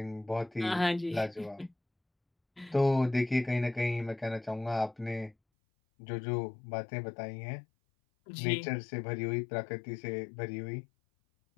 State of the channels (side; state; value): right; drops out; at 5.4 s